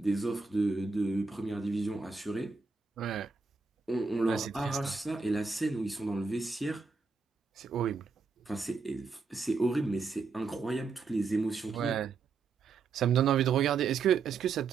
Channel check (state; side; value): quieter; left; 4.7 dB